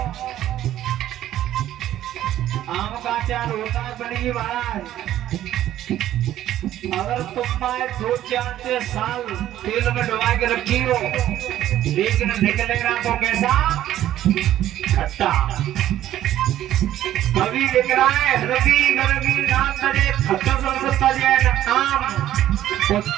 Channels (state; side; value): quieter; left; 12.7 dB